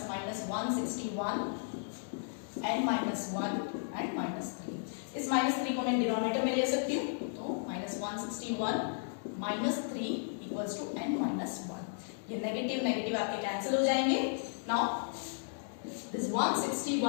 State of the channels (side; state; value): right; silent; digital silence